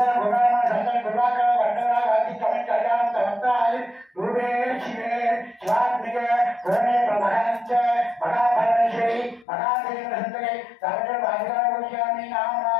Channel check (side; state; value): right; drops out; at 9.5 s